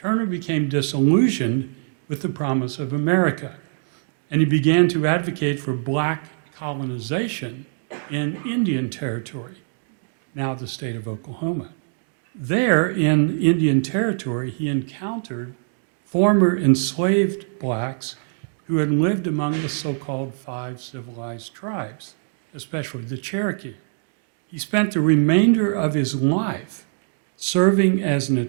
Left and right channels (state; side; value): silent; left; digital silence